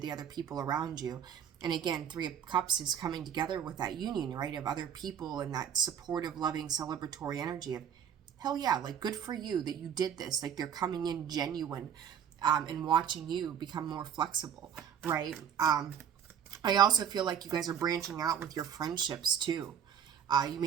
other people around you. And again, 3 of Cups is coming together with that union, right, of other people and that supportive, loving, celebratory energy of, hell yeah, like, good for you that you did this. Like, they're coming in genuine and watching you become more flexible, right? I also feel like you guys are branching out with your friendships too. You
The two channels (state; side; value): quieter; left; 8.6 dB